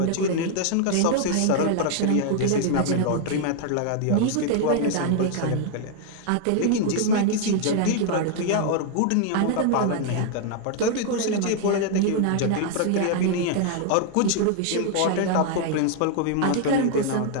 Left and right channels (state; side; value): different; both; correlation 0.00